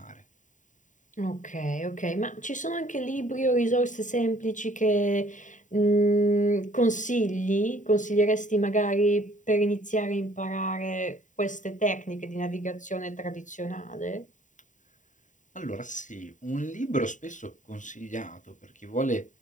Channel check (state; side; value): late; right; 0.36 ms